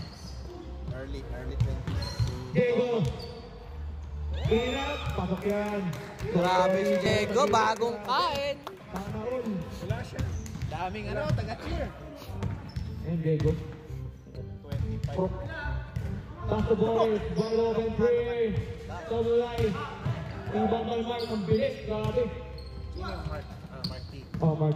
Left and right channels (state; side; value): identical; both; correlation 1.00